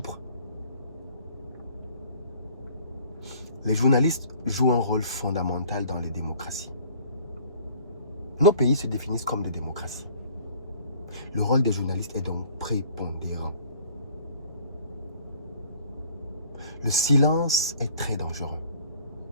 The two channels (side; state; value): both; inverted; correlation -0.53